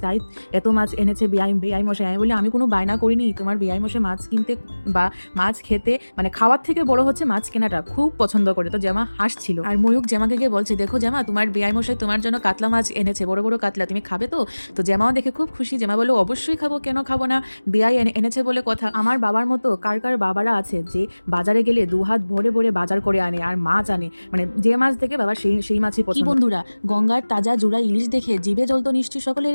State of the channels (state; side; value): inverted; both; correlation -1.00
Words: তাই এত মাছ এনেছে বেআই মশাই। আমি বলি আমি কোনো বায়না করিনি, তোমার বেআই মশাই মাছ কিনতে বা মাছ খেতে, মানে খাওয়ার থেকে বড় হচ্ছে মাছ কেনাটা, খুব পছন্দ করে। তো জামা হাসছিল। আর ময়ূক জামাকে গিয়ে বলছে দেখো জামা, তোমার বেআই মশাই তোমার জন্য কাতলা মাছ এনেছে, বড় বড় কাতলা, তুমি খাবে তো? তো জামাও দেখে খুব খুশি। জামা বললো অবশ্যই খাবো, কেন খাবো না, বেআই এনেছে বলে কথা। আমার বাবার মতো কার কার বাবারা আছে যে বাজারে গেলে 2 হাত ভরে ভরে বাজার করে আনে আর মাছ আনে, মানে যে মাছ দেখে বাবা সেই মাছই পছন্দ। বন্ধুরা, গঙ্গার তাজা জোড়া ইলিশ দেখে জিভে জল তো নিশ্চয়ই